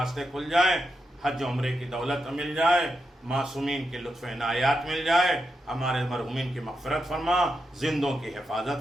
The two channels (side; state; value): both; normal; correlation 0.86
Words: کھل جائیں، حج عمرے کی دولت مل جائے، معصومین کے لطف عنایات مل جائے، ہمارے مرحومین کی مغفرت فرما، زندوں کی